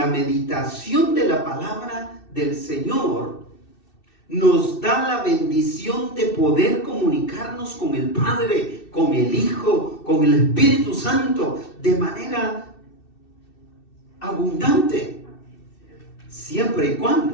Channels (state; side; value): late; right; 2.6 ms